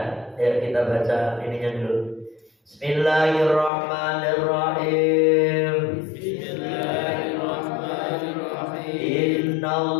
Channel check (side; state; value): right; drops out; at 3.7 s